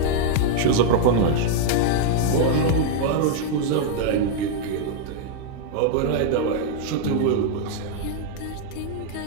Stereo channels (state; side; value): different; both; correlation -0.01